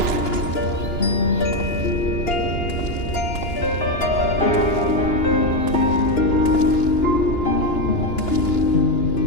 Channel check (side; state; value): right; late; 2.9 ms